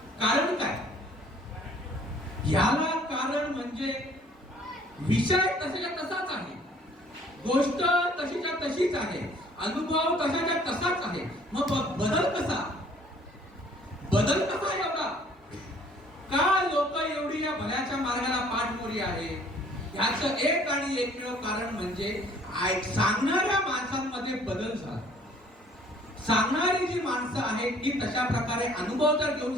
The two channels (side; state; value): both; normal; correlation 0.57